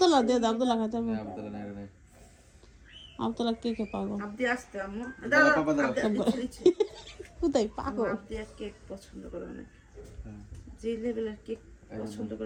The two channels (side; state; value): both; identical; correlation 1.00